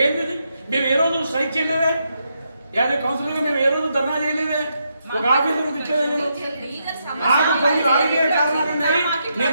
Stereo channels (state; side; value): inverted; both; correlation -0.81